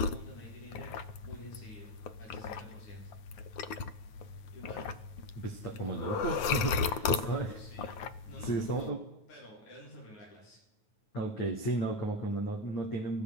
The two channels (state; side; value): late; right; 9.3 ms